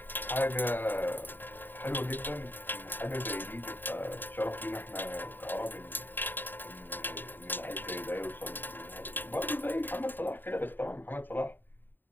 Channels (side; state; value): right; late; 0.092 ms